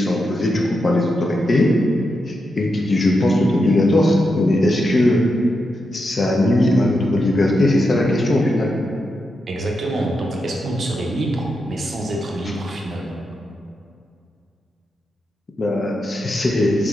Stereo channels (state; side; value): normal; both; correlation 0.86